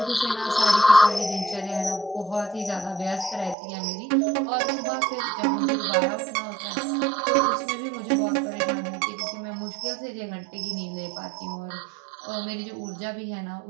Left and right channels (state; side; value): drops out; left; at 3.6 s